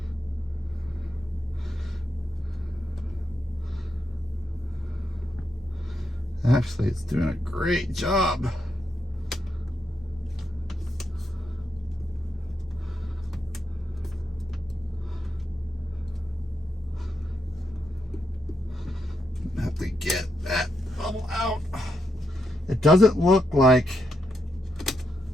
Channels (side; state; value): both; normal; correlation 0.82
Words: Actually, it's doing a great job. Have to get that bubble out. It doesn't look like,